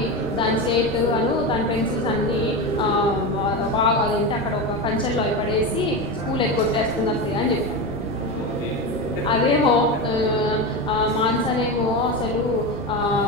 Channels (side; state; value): both; normal; correlation 0.19